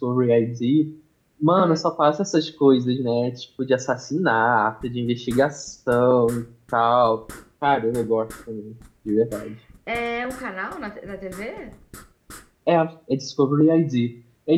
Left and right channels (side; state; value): both; identical; correlation 1.00